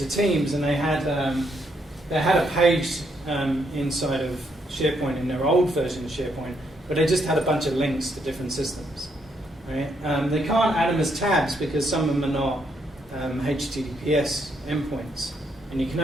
Teams, and they had a page inside of SharePoint in their old version of SharePoint, but they just had a bunch of links to different systems. Right? They can't add them as tabs because some of them are not HTTPS endpoints, and you can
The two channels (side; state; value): both; normal; correlation 0.75